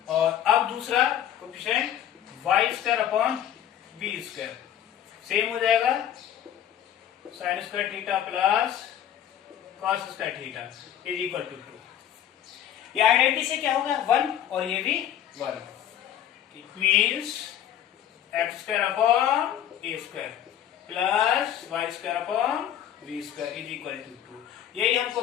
और अब दूसरा coefficient Y square upon B square same हो जाएगा, sine square theta plus cos square theta is equal to 2। ये आइडेंटिटी से क्या होगा 1 और ये भी 1। It means X square upon A square plus Y square upon B square is equal to 2। यही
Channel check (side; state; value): right; quieter; 10.6 dB